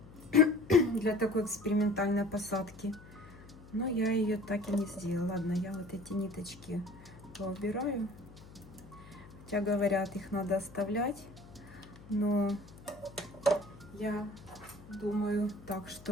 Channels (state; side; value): noise; left; hum, 19 dB below the sound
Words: для такой экспериментальной посадки. Но я ее так и не сделала. Ладно, я вот эти ниточки поубираю. Хотя говорят, их надо оставлять. Но Я думаю так,